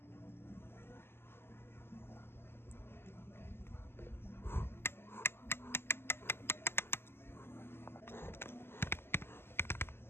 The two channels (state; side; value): late; right; 0.12 ms